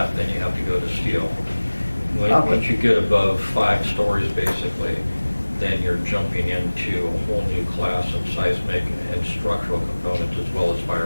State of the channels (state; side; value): inverted; both; correlation -1.00